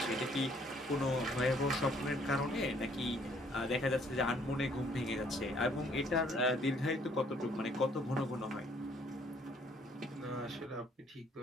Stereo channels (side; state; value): both; normal; correlation 0.63